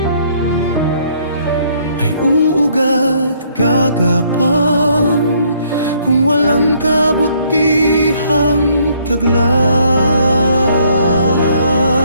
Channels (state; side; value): inverted; both; correlation -0.66